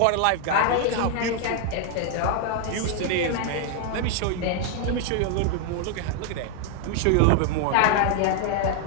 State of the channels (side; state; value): both; different; correlation 0.00